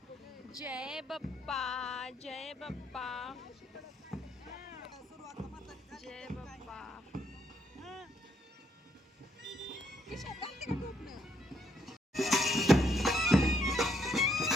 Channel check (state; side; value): normal; both; correlation 0.73